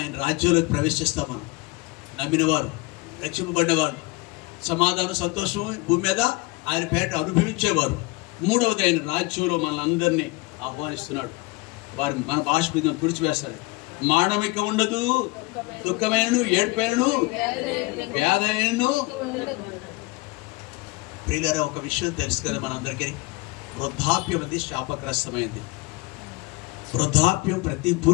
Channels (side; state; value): right; quieter; 23.8 dB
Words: రాజ్యంలోకి ప్రవేశిస్తాం. మనం నమ్మిన వారు, రక్షింపబడ్డవారు, సమాధానం, సంతోషం భూమి మీద ఆయన పేట అనుభవించేవారు. మూడవది, ఆయన రాజ్యంలో మనల్ని ఆహ్వానిస్తున్నాడు. వారి మన బాష్ప బిందువును తుడిచివేస్తాడు. మానవిక ఉండదు, దుఃఖమైనను, ఏడ్పైనను, వ్యాధైనను. ప్రియులారా, ఒక విషయం తెలుసు కదా మనందరికీ, వృద్ధాప్యం అది శాపగ్రస్తమైంది. వృద్ధాప్యం ప్రతి